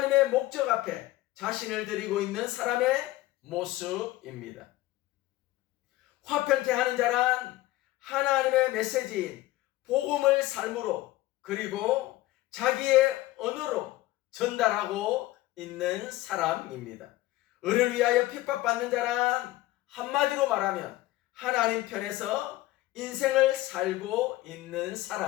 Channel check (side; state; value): right; quieter; 17.2 dB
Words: 목적 앞에 자신을 드리고 있는 사람의 모습입니다. 화평케 하는 자란 하나님의 메시지인 복음을 삶으로 그리고 자기의 언어로 전달하고 있는 사람입니다. 을을 위하여 핍박받는 자란 한마디로 말하면 하나님 편에서 인생을 살고 있는